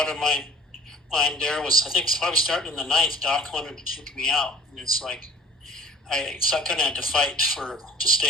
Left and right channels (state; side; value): normal; both; correlation 0.49